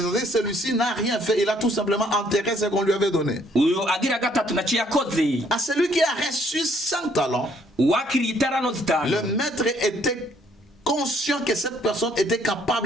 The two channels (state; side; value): normal; both; correlation 0.65